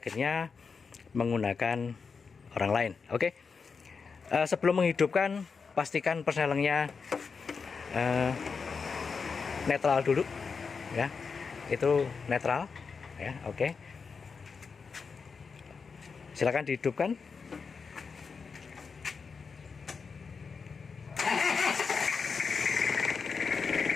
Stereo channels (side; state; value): right; quieter; 5.3 dB